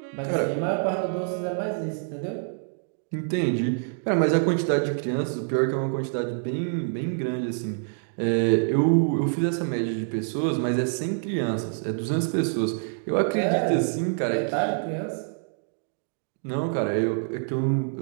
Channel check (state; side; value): silent; left; digital silence